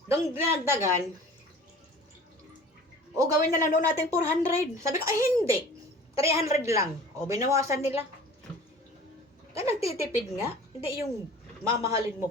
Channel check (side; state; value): both; normal; correlation 0.44